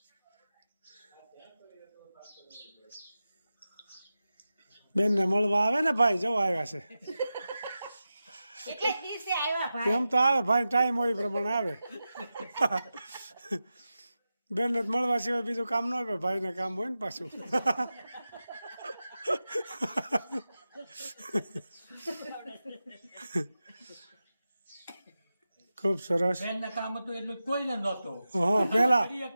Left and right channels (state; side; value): inverted; both; correlation -0.93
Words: બેનને મળવા આવે ને ભાઈ, જો આવ્યા છે. એમ તો આવે ભાઈ, ટાઈમ હોય એ પ્રમાણે આવે. બેનને મળવા સિવાય બીજું કામ ન હોય, ભાઈને કામ હોય ને પાછું. ખૂબ સરસ. બેનને કામ હતું એટલું કોઈને નહોતું. હા,